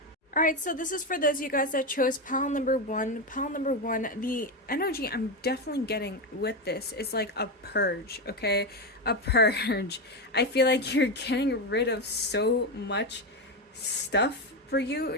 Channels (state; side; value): normal; both; correlation 0.12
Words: Alright, so this is for those of you guys that chose pile number 1. Pile number 1, the energy I'm definitely getting with this is like a purge, okay? A purge. I feel like you're getting rid of so much stuff for